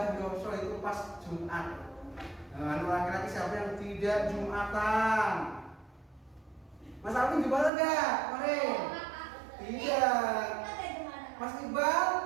Yoso itu pas Jumat. Nah, laki-laki siapa yang tidak Jumatan? Mas Alvin Jumatan enggak? Kemarin? Tidak. Mas Iqbal?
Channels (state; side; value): drops out; left; at 7.7 s